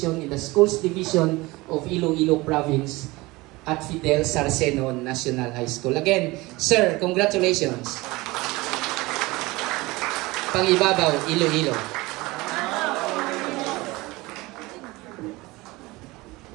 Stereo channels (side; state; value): left; quieter; 21.6 dB